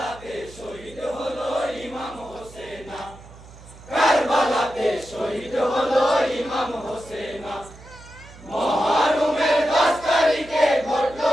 শহীদ হলো ইমাম হোসেন। কারবালাতে শহীদ হলো ইমাম হোসেন। মুহররমের 10 তারিখে ঘটলো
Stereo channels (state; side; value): noise; right; hum, 19 dB below the sound